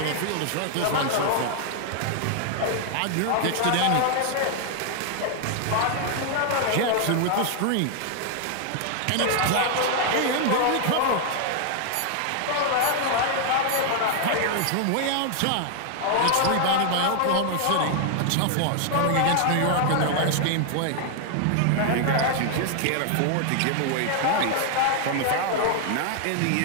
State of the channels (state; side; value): different; both; correlation 0.00